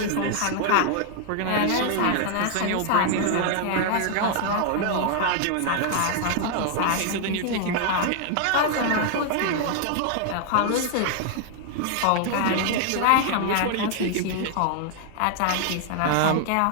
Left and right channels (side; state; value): both; different; correlation 0.00